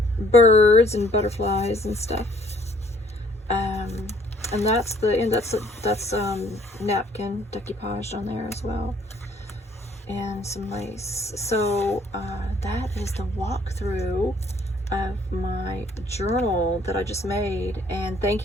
birds and butterflies and stuff. And that's that's napkin decoupaged on there as well, and some lace. So that is the walkthrough of my journal that I just made. And thank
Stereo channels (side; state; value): both; normal; correlation 0.60